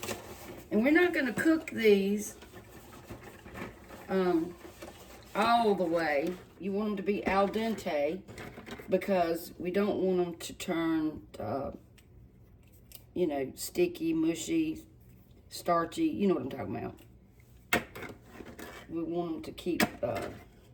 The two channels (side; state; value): both; identical; correlation 1.00